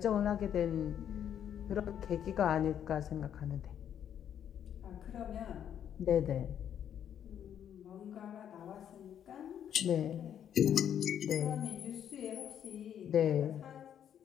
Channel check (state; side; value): quieter; right; 9.4 dB